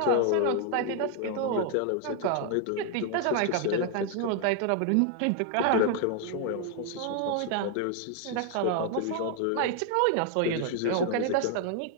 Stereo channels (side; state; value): both; different; correlation 0.00